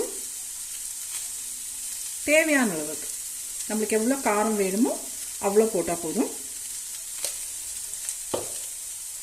தேவையான அளவுக்கு நம்மளுக்கு எவ்வளோ காரம் வேணுமோ அவ்வளோ போட்டால் போதும்.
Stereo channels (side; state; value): both; identical; correlation 1.00